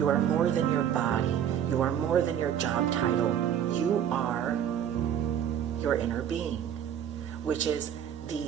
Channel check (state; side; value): quieter; left; 9.5 dB